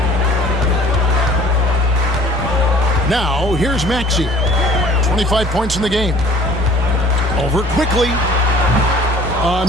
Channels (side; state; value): both; normal; correlation 0.51